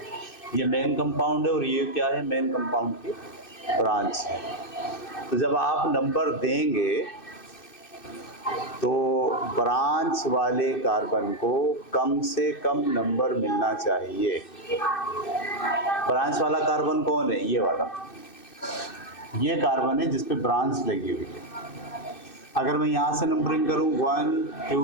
ये मेन कंपाउंड है और ये क्या है? मेन कंपाउंड की ब्रांच है। तो जब आप नंबर देंगे तो ब्रांच वाले कार्बन को कम से कम नंबर मिलना चाहिए। ब्रांच वाला कार्बन कौन है? ये वाला, ये कार्बन है जिस पे ब्रांच लगी हुई है। अगर मैं यहाँ से नंबरिंग करूँ 1,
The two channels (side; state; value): right; late; 2.6 ms